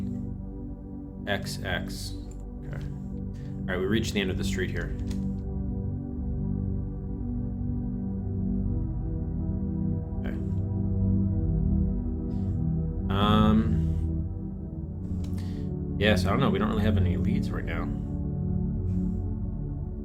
XX. Okay. Alright, we reached the end of the street here. Okay. Yes, I don't know, we don't really have any leads right now.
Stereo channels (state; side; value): identical; both; correlation 1.00